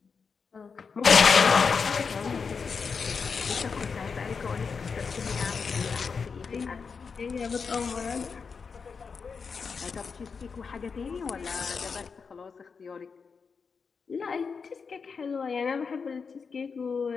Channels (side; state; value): right; quieter; 5.4 dB